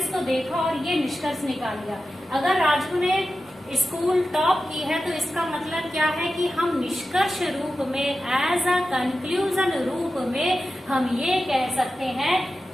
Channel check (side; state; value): both; normal; correlation 0.92